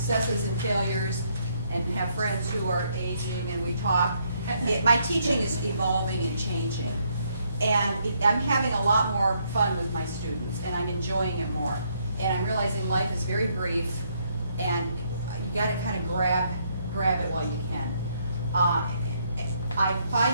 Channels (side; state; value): both; inverted; correlation -0.72